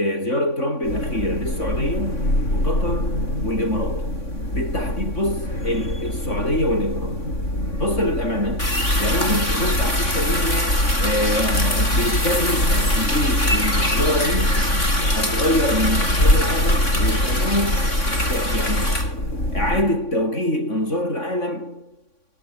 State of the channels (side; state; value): right; late; 3.6 ms